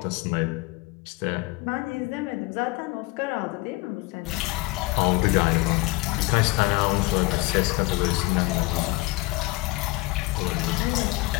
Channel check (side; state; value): right; quieter; 22.2 dB